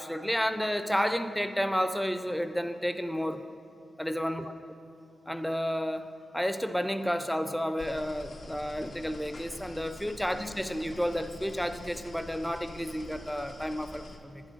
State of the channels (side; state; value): both; normal; correlation 0.98